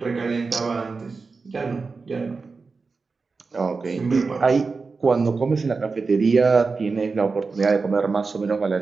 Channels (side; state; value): left; quieter; 4.4 dB